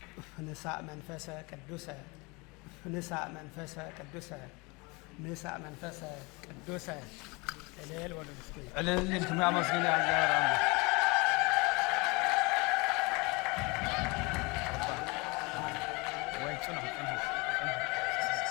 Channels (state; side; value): quieter; right; 27.1 dB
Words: ንሳእ መንፈሰ ቅዱሰ ንሳእ መንፈሰ ቅዱሰ ንሳእ መንፈሰ ቅዱሰ እልል ወለድ እስኪ እልል እንትም ያመስግን ያዛራም ወይ ጽኑ